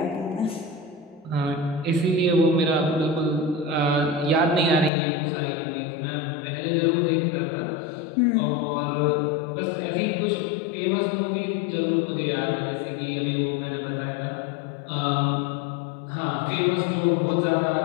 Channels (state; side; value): drops out; right; at 4.9 s